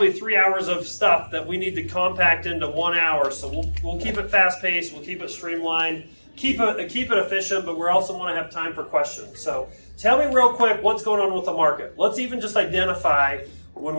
3 hours of stuff that we need to compact into 1 hour. So we'll keep it fast-paced, we'll keep it streamlined, keep it efficient, but we also want to have time for questions. So tell me real quick what's going on with the market. Let's even just identify, when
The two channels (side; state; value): both; inverted; correlation -1.00